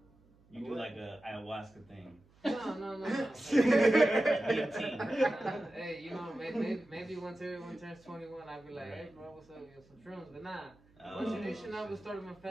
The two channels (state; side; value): noise; right; hum, 30 dB below the sound